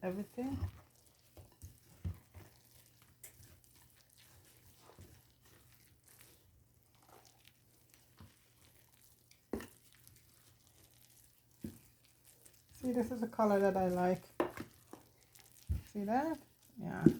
everything. See, this is the color that I like. See that? Yeah.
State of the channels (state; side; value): identical; both; correlation 1.00